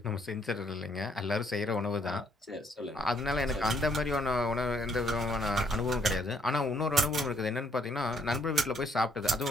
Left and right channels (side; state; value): both; normal; correlation 0.68